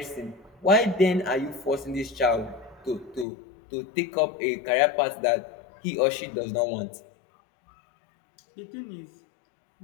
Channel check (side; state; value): right; drops out; at 3.2 s